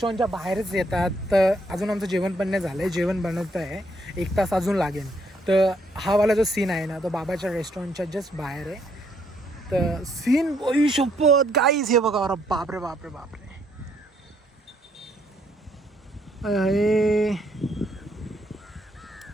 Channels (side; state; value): both; normal; correlation 0.70